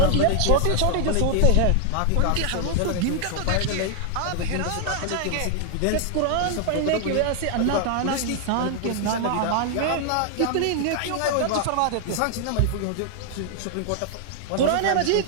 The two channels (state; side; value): different; both; correlation 0.00